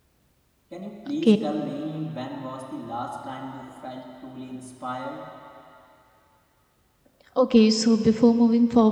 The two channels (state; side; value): identical; both; correlation 1.00